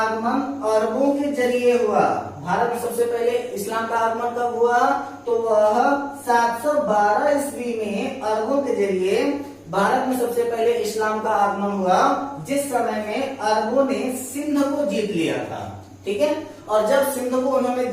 अरबों के जरिए हुआ। भारत में सबसे पहले इस्लाम का आगमन कब हुआ, तो वह 712 ईस्वी में अरबों के जरिए भारत में सबसे पहले इस्लाम का आगमन हुआ, जिस समय में अरबों ने सिंध को जीत लिया था। ठीक है, और जब सिंध को उन्होंने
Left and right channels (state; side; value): identical; both; correlation 1.00